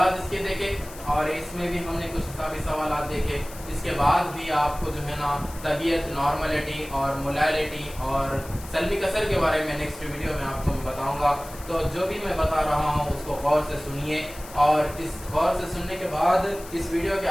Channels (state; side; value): noise; left; hiss, 17 dB below the sound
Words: इसके देखे और इसमें भी हमने कुछ हिसाबी सवालात देखे। इसके बाद भी आपको जो है ना तबीयत, नॉर्मलिटी और मोलैलिटी और सल्बी कसर के बारे में नेक्स्ट वीडियो में आपको मैं बताऊंगा। तो जो भी मैं बता रहा हूँ उसको गौर से सुनिए और इस गौर से सुनने के बाद इस वीडियो के